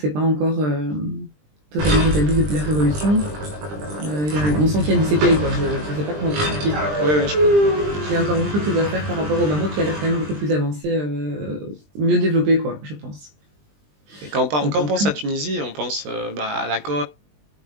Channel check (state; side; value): late; left; 20 ms